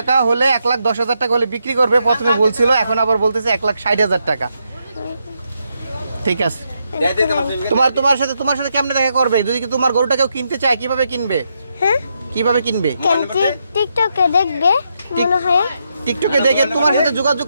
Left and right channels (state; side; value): inverted; both; correlation -0.81